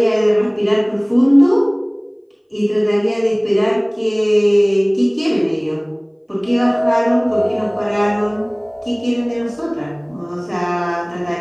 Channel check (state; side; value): identical; both; correlation 1.00